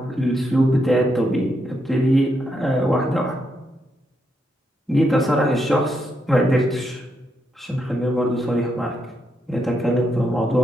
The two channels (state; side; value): normal; both; correlation 0.80